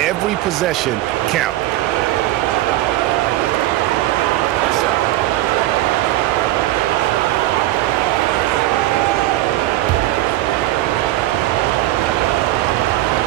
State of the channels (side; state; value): left; quieter; 15.7 dB